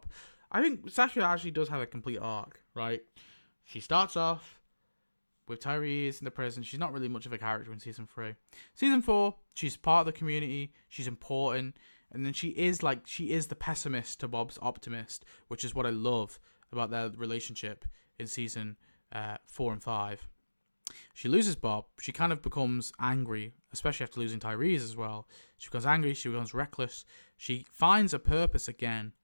I think Sasha actually does have a complete arc, right? She starts off with Tyrese in the prison. She's not really much of a character in season 3. Season 4, she's part of the community. She's important. And then she is the pessimist to Bob's optimist, which is what I love about their relationship in season 4 and 5. She loses Bob. She kind of becomes angry, especially after losing Tyrese as well. She becomes angry. She becomes reckless. She finds a purpose again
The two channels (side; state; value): both; inverted; correlation -1.00